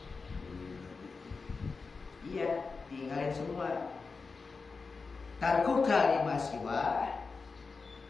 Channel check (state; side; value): quieter; right; 4.5 dB